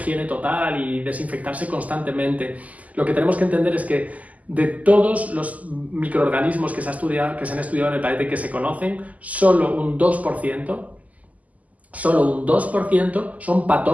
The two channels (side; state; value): left; late; 0.075 ms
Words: total y desinfectarse constantemente, lo que tenemos que entender es que de todos los microorganismos que se han estudiado en el planeta y que se conocen, solo un 2% son